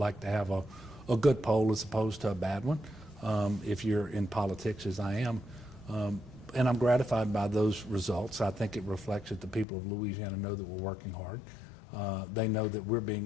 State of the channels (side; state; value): right; drops out; at 9.7 s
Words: to have a good poll as opposed to a bad one if you're in politics, as I am. And I'm gratified by those results. I think it reflects that the people of Louisiana know that we're working hard. They know that we're